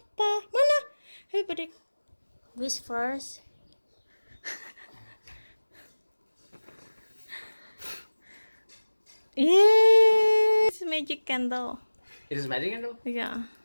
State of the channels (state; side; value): inverted; both; correlation -1.00